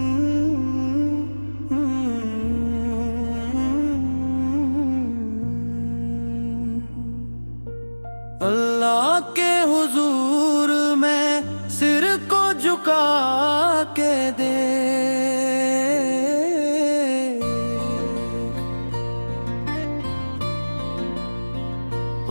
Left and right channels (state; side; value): inverted; both; correlation -1.00